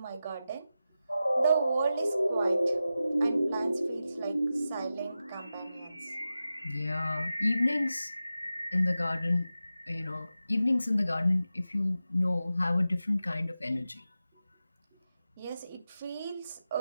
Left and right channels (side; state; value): both; inverted; correlation -0.93